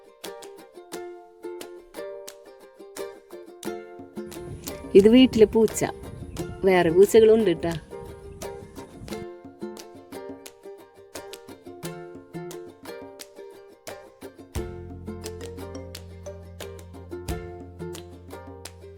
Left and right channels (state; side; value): identical; both; correlation 1.00